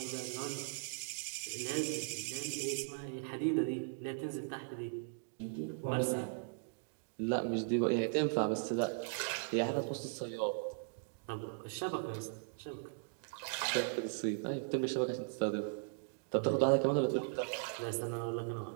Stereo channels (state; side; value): silent; left; digital silence